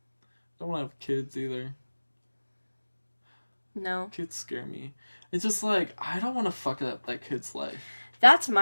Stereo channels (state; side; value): inverted; both; correlation -1.00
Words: Don't want to have kids either. No. Kids scare me. It's just like, I don't want to fuck up that kid's life. That's